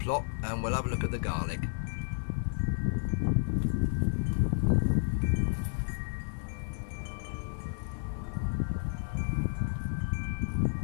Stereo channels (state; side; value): silent; right; 57 dB below the other